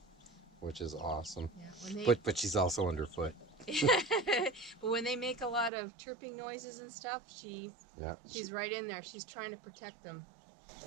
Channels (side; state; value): left; drops out; at 5.7 s